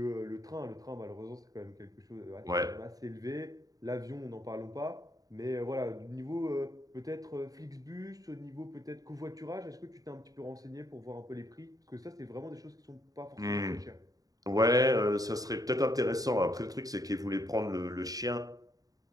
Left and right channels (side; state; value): left; late; 0.18 ms